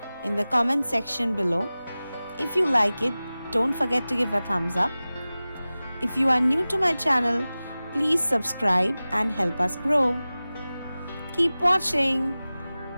in the comment section below. If you like it, don't forget to give a thumbs up. If you are new to my channel, please subscribe and help us grow. Keep watching.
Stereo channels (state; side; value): inverted; both; correlation -0.97